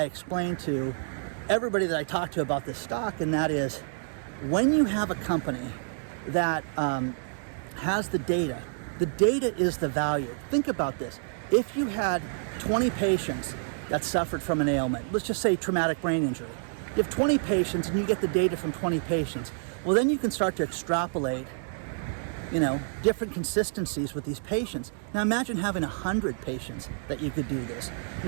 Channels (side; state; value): left; silent; digital silence